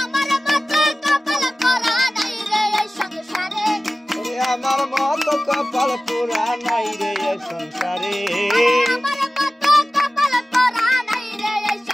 আমার মতো কপাল পোড়া নাই রে এই সংসারে আমার মতো কপাল পোড়া নাই রে এই সংসারে আমার মতো কপাল পোড়া নাই রে এই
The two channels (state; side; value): normal; both; correlation 0.96